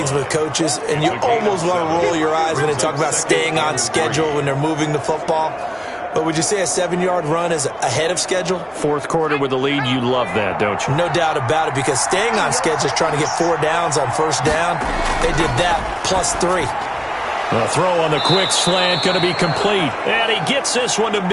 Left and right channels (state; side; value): identical; both; correlation 1.00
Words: with coaches, and you almost want to roll your eyes when they talk about staying on schedule when they're moving the football. But would you say a 7-yard run is ahead of schedule? 4th quarter with the lead, you love that, don't you? No doubt about it, because staying on schedule is trying to get 4 downs on 1st down. They did that plus 3. The throw on the quick slant going to be complete. And he gets this one to